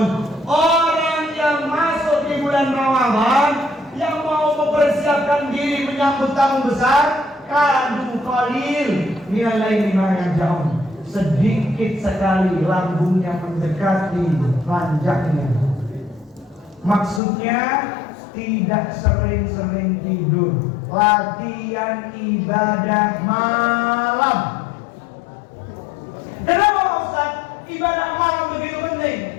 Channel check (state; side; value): drops out; right; at 17.2 s